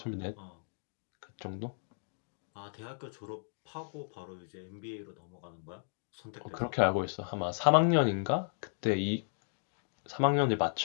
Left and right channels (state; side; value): silent; right; digital silence